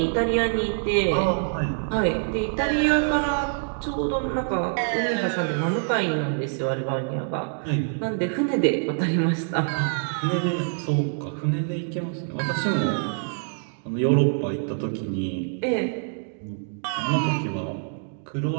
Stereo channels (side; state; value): left; silent; digital silence